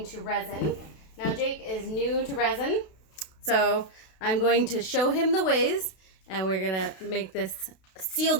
to resin. Now Jake is new to resin, so I'm going to show him the ways, and we're gonna make this, seal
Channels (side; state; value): right; late; 32 ms